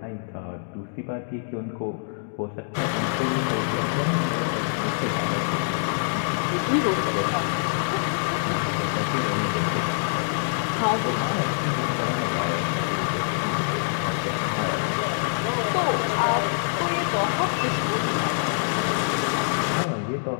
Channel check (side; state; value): right; silent; digital silence